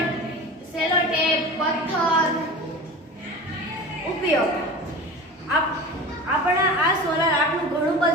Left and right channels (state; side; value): normal; both; correlation 0.34